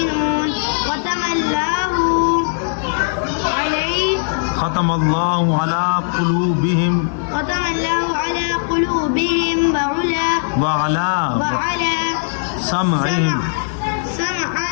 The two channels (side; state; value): right; silent; digital silence